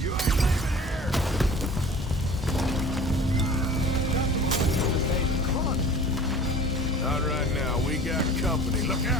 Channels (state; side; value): normal; both; correlation 0.43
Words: ain't leaving here! Come on. Not right now. We got company. Look